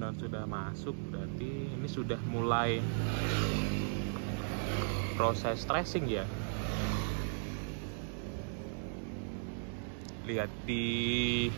sudah masuk berarti ini sudah mulai proses tracing ya. Lihat di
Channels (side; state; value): left; silent; digital silence